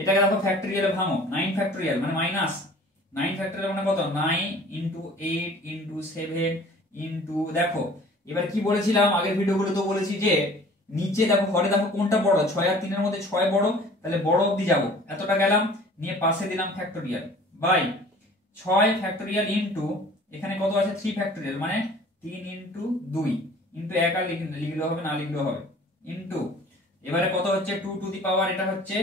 দেখো ফ্যাক্টরিয়ালে ভাঙো, 9 ফ্যাক্টরিয়াল মানে মাইনাস 9 ফ্যাক্টরিয়াল মানে কত, 9 ইন্টু 8 ইন্টু 7 ইন্টু, দেখো এবার কি বলেছিলাম আগের ভিডিওগুলো তো বলেছি যে নিচে দেখো ঘরে দেখো কোনটা বড়, 6 আর 3 এর মধ্যে 6 বড়, তাহলে বড় অবধি যাব, এতটা গেলাম, নিয়ে পাশে দিলাম ফ্যাক্টরিয়াল বাই 6 ফ্যাক্টরিয়াল ইন্টু এখানে কত আছে 3 ফ্যাক্টরিয়াল মানে 3 ইন্টু 2 ইন্টু 1 আর লিখলেও হবে না লিখলেও হবে ইন্টু এবারে কত হচ্ছে 2 টু দি পাওয়ার, এটা হচ্ছে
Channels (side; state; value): both; normal; correlation 0.48